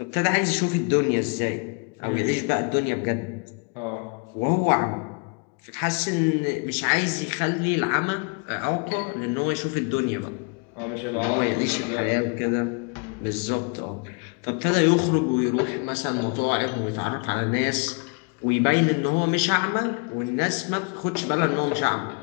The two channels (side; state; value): right; quieter; 34.1 dB